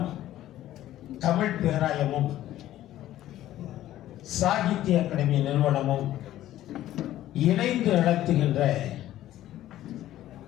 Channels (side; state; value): right; quieter; 13.6 dB